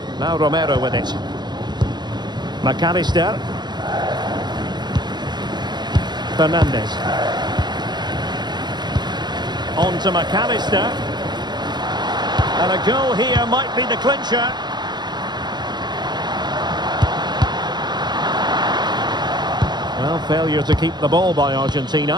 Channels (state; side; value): late; left; 0.21 ms